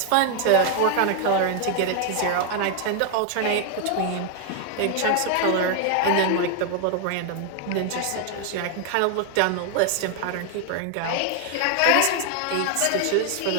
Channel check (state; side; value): different; both; correlation 0.00